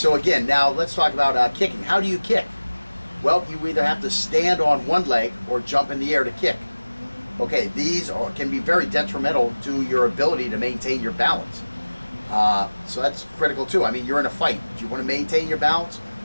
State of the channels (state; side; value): inverted; both; correlation -1.00